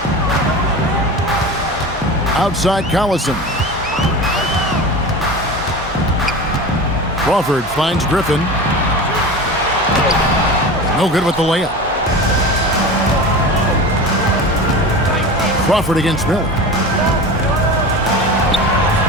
outside Collison. Crawford finds Griffin. No good with the layup. Crawford against Miller.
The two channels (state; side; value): normal; both; correlation 0.31